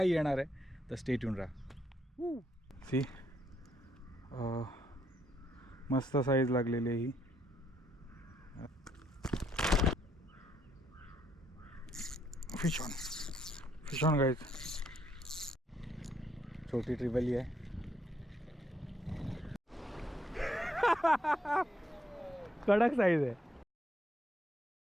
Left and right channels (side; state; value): both; normal; correlation 0.74